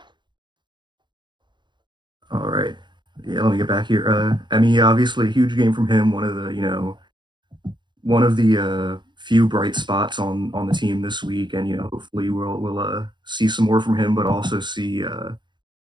All right. Yeah, let me get back here. I mean, yeah, obviously a huge game from him, one of the few bright spots on the team this week, and hopefully we'll see some more from him, but also see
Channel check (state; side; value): late; left; 0.22 ms